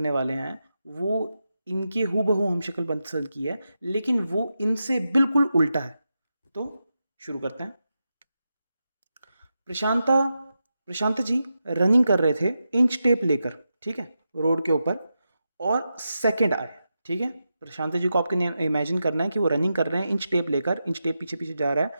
वाले हैं वो इनके हूबहू हम शक्ल पसंद की है, लेकिन वो इनसे बिल्कुल उल्टा है। तो शुरू करते हैं। प्रशांता प्रशांत जी रनिंग कर रहे थे इंच टेप लेकर, ठीक है, रोड के ऊपर, और सेकंड आए। ठीक है, प्रशांत जी को आपके इमेजिन करना है कि वो रनिंग कर रहे हैं इंच टेप लेकर, इंच टेप पीछे पीछे जा रहा है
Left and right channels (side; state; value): both; inverted; correlation -0.89